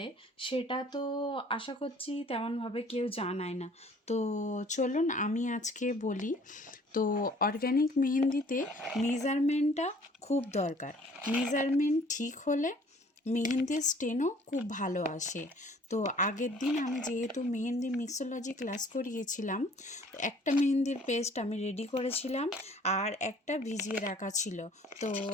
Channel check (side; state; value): both; normal; correlation 0.54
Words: সেটা তো আশা করছি তেমনভাবে কেউ জানায় না। তো চলুন আমি আজকে বলি। তো অর্গ্যানিক মেহেন্দিতে মেজারমেন্টটা খুব দরকার। মেজারমেন্ট ঠিক হলে মেহেন্দির স্টেনও খুব ভালো আসে। তো আগের দিন আমি যেহেতু মেহেন্দি মিক্সোলজি ক্লাস করিয়েছিলাম, তো একটা মেহেন্দির পেস্ট আমি রেডি করেছিলাম আর একটা ভিজিয়ে রাখা ছিল। তো